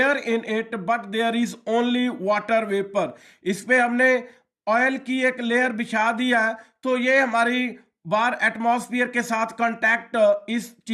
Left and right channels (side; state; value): both; identical; correlation 1.00